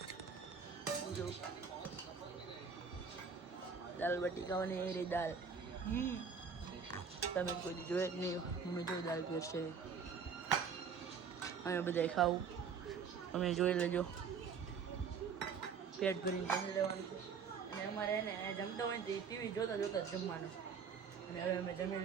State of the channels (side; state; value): left; quieter; 6.2 dB